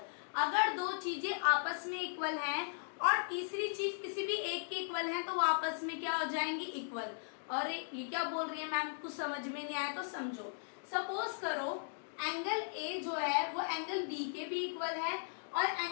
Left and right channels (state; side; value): silent; right; digital silence